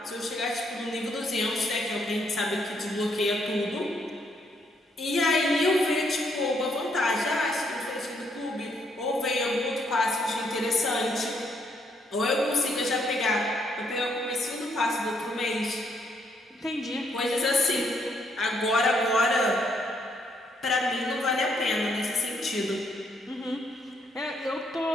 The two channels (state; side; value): normal; both; correlation 0.72